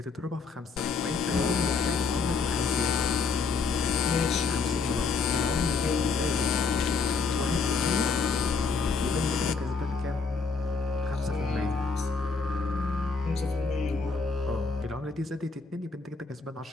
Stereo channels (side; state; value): right; quieter; 4.7 dB